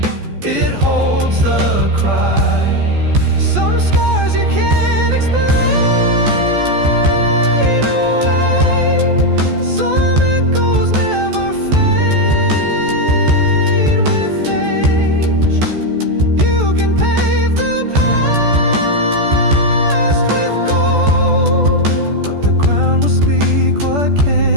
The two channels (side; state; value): left; late; 14 ms